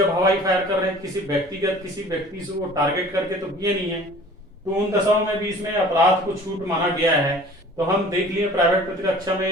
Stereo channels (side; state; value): both; normal; correlation 0.47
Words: हवाई फायर कर रहे हैं किसी व्यक्ति से वो टारगेट करके तो किए नहीं है, तो उन दशाओं में भी इसमें अपराध को छूट माना गया है। तो हम देख लिए प्राइवेट प्रतिरक्षा